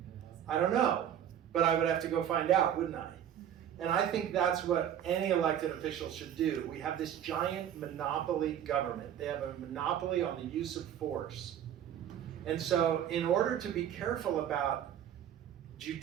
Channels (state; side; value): quieter; left; 10.0 dB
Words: don't know, but I would have to go find out, wouldn't I? And I think that's what any elected official should do. We have this giant monopoly government. They have a monopoly on the use of force. And so in order to be careful about